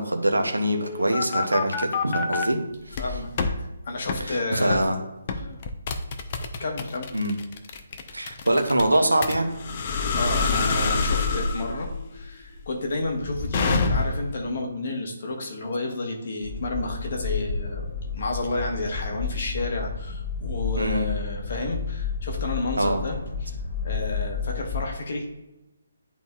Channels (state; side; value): inverted; both; correlation -0.72